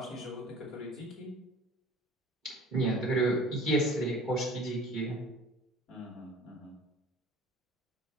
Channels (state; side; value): normal; both; correlation 0.45